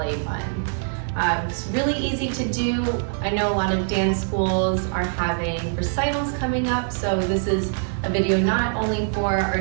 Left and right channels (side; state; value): left; silent; digital silence